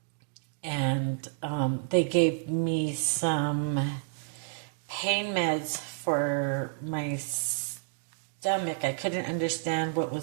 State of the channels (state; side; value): silent; left; digital silence